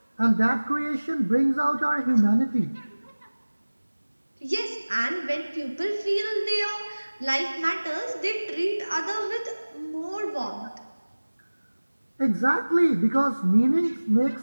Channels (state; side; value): inverted; both; correlation -1.00